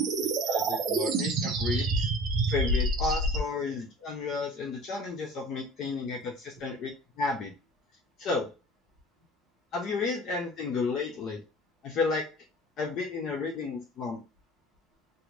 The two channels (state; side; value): normal; both; correlation 0.42